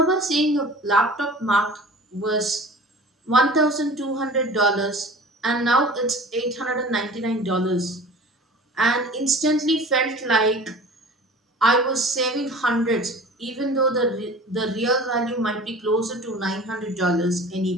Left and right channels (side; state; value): both; normal; correlation 0.42